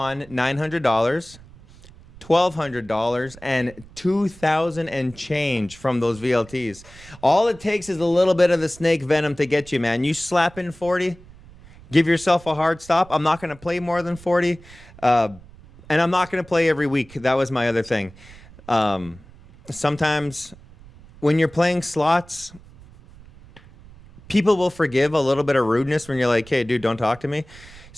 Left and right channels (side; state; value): right; noise; rumble, 22 dB below the sound